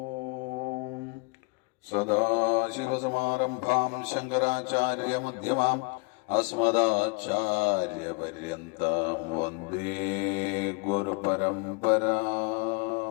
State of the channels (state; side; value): quieter; right; 30.9 dB